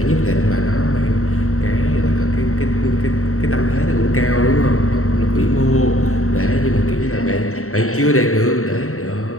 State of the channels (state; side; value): late; right; 0.63 ms